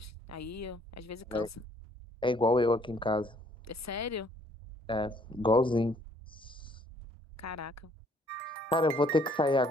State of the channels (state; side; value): normal; both; correlation 0.62